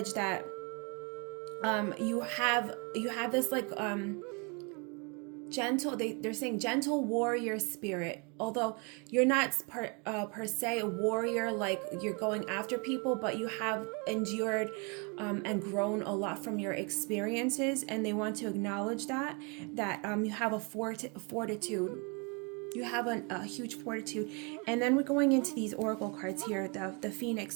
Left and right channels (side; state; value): left; quieter; 33.2 dB